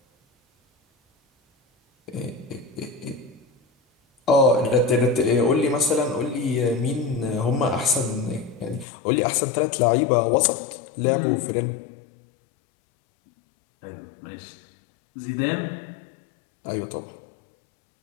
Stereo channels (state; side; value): drops out; right; at 8.8 s